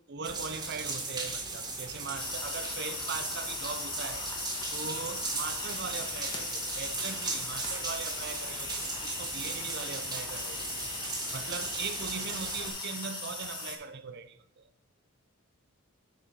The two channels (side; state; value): both; normal; correlation -0.01